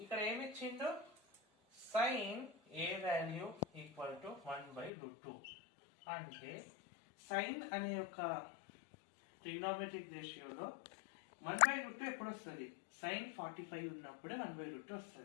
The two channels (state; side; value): drops out; right; at 4.9 s